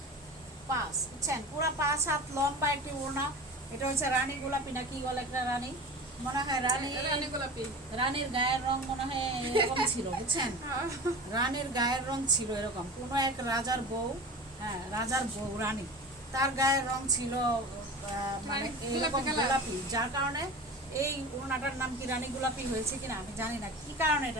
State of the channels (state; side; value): normal; both; correlation 0.33